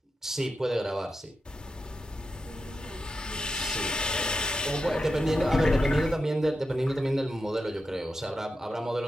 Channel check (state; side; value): normal; both; correlation 0.89